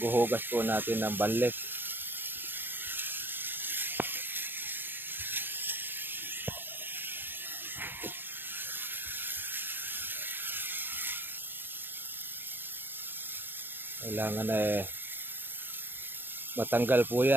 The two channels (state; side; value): late; left; 0.096 ms